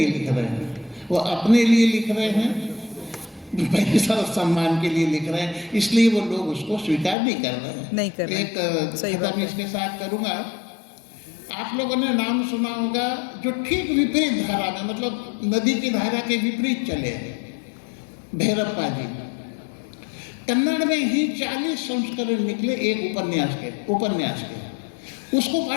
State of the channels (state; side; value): drops out; right; at 7.2 s